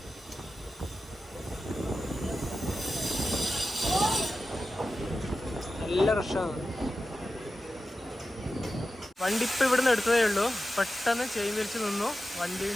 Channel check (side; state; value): both; normal; correlation 0.92